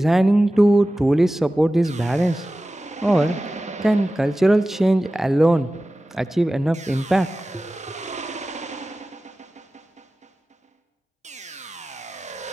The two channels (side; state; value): both; normal; correlation 0.95